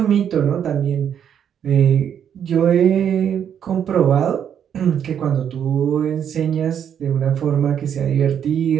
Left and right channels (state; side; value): quieter; left; 8.7 dB